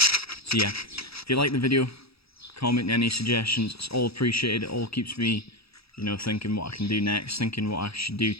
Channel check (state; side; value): late; right; 0.77 ms